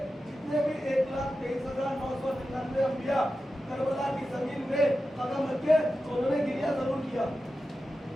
जितने भी 1,23,999 अंबिया करबला की जमीन में कदम रखे तो उन्होंने गिरिया जरूर किया।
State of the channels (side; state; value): both; normal; correlation 0.92